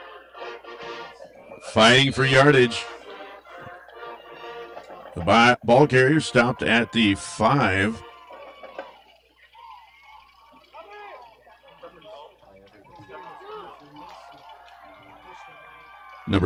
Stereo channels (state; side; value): identical; both; correlation 1.00